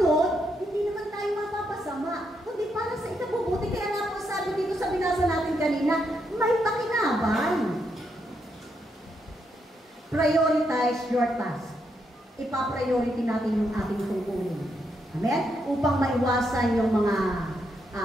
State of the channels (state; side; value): normal; both; correlation 0.79